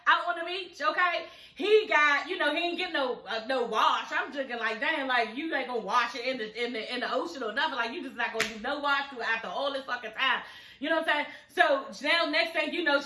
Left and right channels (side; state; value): both; identical; correlation 1.00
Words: out on the beach, okay? He got, you know, he ain't getting no wash. I'm thinking like, damn, like you ain't gonna wash it in the ocean or nothing. Like you just not gonna do no wash through after all this fucking time. You know what I'm saying? So now next thing you know,